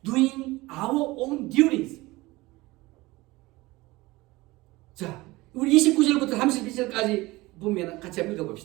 doing our own duties. 자, 우리 29절부터 32절까지 보면 같이 한번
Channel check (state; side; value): quieter; left; 20.6 dB